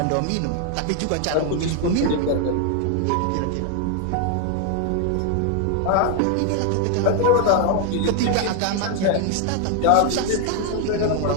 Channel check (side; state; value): both; different; correlation 0.00